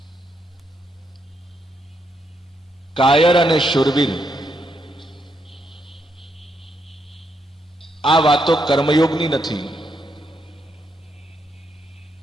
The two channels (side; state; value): both; normal; correlation 0.79